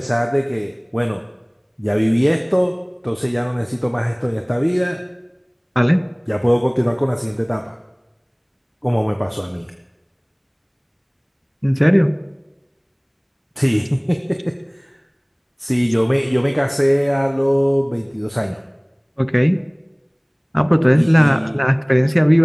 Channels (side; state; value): both; identical; correlation 1.00